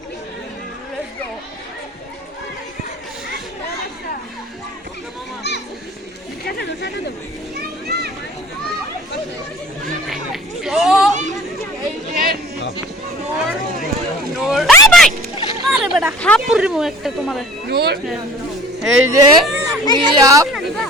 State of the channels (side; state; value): both; normal; correlation 0.46